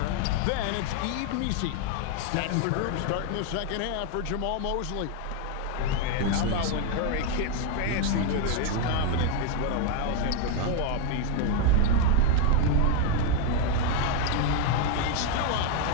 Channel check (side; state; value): both; different; correlation 0.01